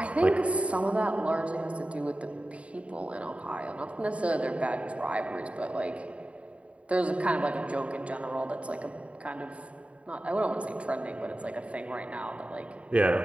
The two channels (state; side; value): late; left; 0.063 ms